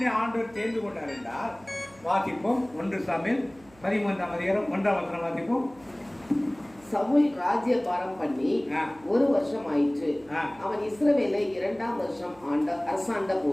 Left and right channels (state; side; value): noise; right; hum, 26 dB below the sound